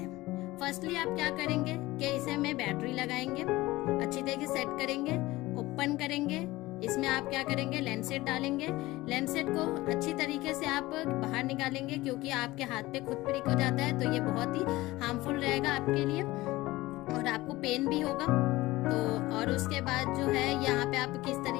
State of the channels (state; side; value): quieter; right; 18.9 dB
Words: फर्स्टली आप क्या करेंगे कि इसे में बैटरी लगाएंगे, अच्छी तरीके से सेट करेंगे, ओपन करेंगे, इसमें आप क्या करेंगे लेंसेट डालेंगे, लेंसेट को अच्छी तरीके से आप बाहर निकालेंगे क्योंकि आपके हाथ पे खुद प्रिक हो जाता है, तो ये बहुत ही हार्मफुल रहेगा आपके लिए और आपको पेन भी होगा। तो और उसके बाद जो है यहाँ पे आप किस